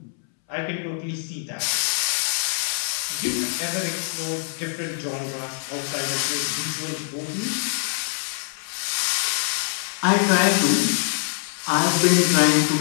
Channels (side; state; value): right; silent; 63 dB below the other